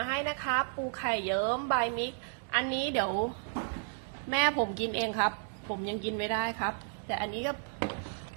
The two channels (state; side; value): silent; left; 55 dB below the other